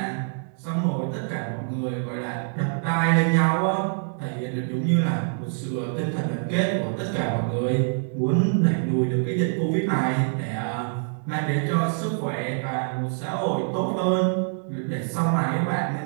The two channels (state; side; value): silent; left; digital silence